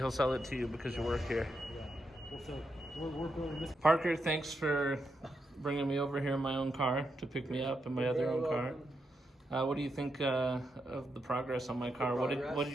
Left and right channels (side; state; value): both; normal; correlation 0.83